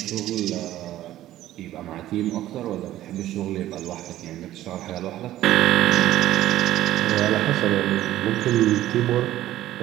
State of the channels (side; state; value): left; quieter; 13.9 dB